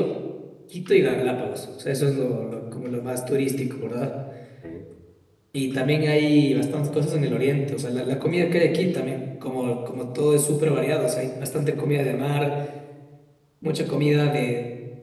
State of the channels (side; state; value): both; identical; correlation 1.00